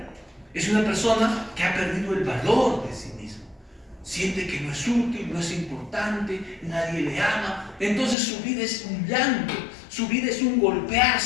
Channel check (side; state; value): right; drops out; at 8.2 s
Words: es una persona que ha perdido el valor de sí mismo. Siente que no es útil, no es importante, nadie le ama. Entonces su vida es un llanto, su vida es un